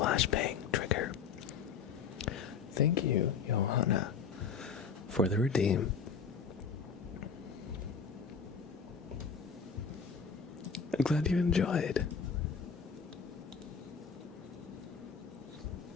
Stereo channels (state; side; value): quieter; right; 6.0 dB